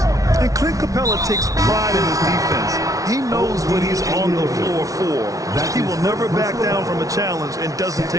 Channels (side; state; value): left; late; 0.17 ms